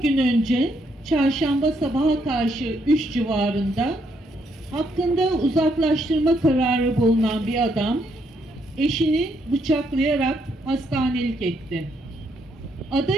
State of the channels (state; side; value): normal; both; correlation 0.74